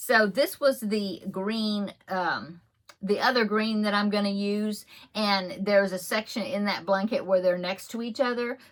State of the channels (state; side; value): identical; both; correlation 1.00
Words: this was the green, the other green that I'm gonna use, and there's a section in that blanket where they're next to each other.